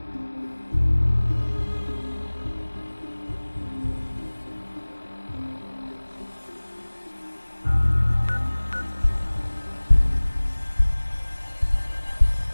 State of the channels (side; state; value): both; inverted; correlation -1.00